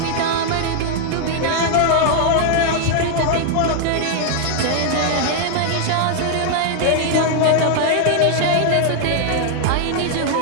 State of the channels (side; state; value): both; different; correlation 0.00